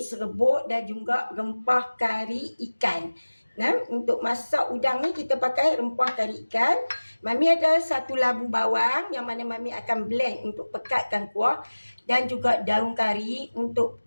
serbuk dan juga rempah kari ikan. Nah, untuk masak udang ni kita pakai rempah kari ikan. Mami ada 1 labu bawang yang mana Mami akan blend untuk pekatkan kuah dan juga daun kari untuk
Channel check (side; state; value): both; inverted; correlation -1.00